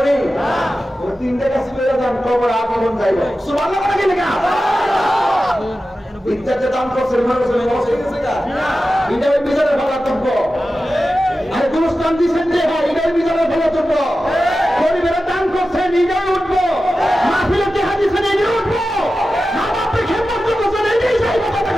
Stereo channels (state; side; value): normal; both; correlation 0.93